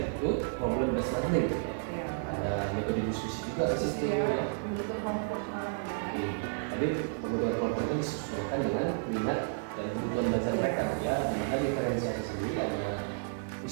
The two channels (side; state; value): left; silent; 57 dB below the other